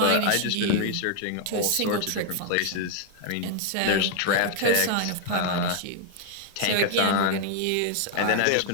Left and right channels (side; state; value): both; different; correlation 0.00